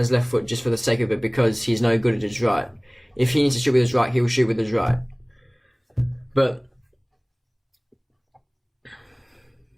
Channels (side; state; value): both; identical; correlation 1.00